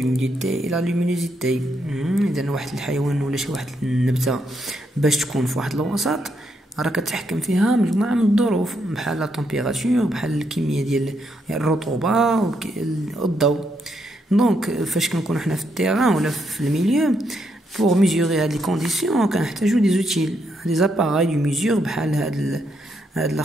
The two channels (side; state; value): both; normal; correlation 0.78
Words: et la luminosité. إذا واحد الحيوان ولا شي واحد النبتة باش تكون في واحد الوسط راه كتحكم فيها مجموعة من الظروف بحال لا تمبيراتور بحال الكمية ديال الرطوبة والضوء. دونك فاش كنكونوا حنا في التيران ولا في الميليو pour mesurer هاد لي كونديسيون كنحتاجو دي زوتيل دي زاباراي دو ميزور بحال هاد